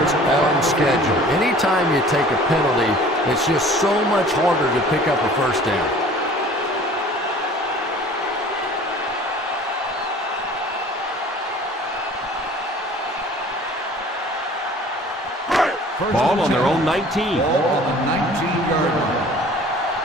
on schedule. Anytime you take a penalty, it's just so much harder to pick up a first down. Ball on their own 19. Ball on the 19-yard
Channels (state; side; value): normal; both; correlation 0.48